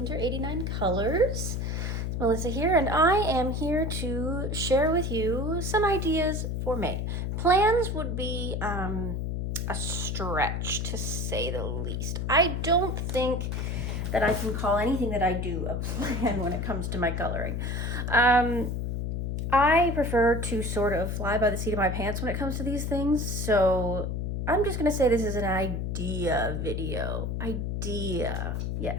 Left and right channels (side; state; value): left; noise; hum, 2 dB below the sound